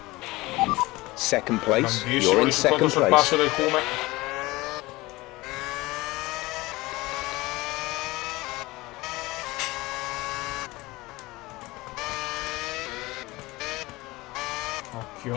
Second place. Grandissimo, You're in il secondo second sorpasso place. del Cume.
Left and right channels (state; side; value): quieter; right; 20.7 dB